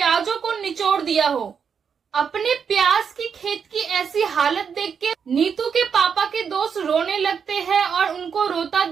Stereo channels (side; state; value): left; quieter; 6.7 dB